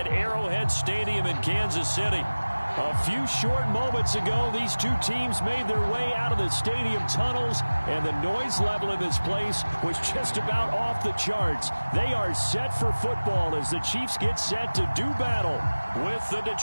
Arrowhead Stadium in Kansas City. A few short moments ago, these two teams made their way out of the stadium tunnels, and the noise level in this place was just about off the charts. They are set for football as the Chiefs get set to do battle with the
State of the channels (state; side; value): inverted; both; correlation -1.00